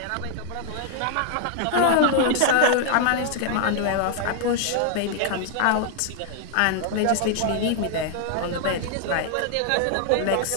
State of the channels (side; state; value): both; different; correlation 0.00